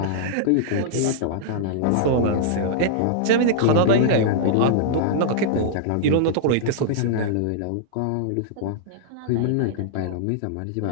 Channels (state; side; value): different; both; correlation -0.02